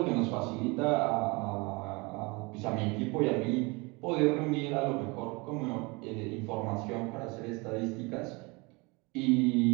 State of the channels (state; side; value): quieter; left; 26.9 dB